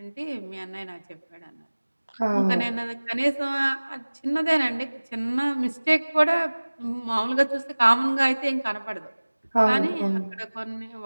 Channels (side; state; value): both; inverted; correlation -1.00